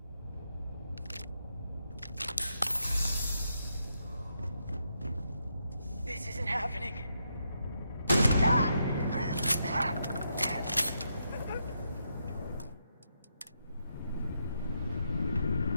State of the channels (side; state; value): both; inverted; correlation -0.81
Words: This isn't happening.